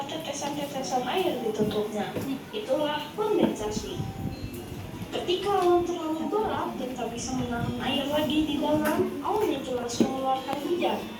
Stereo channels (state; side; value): identical; both; correlation 1.00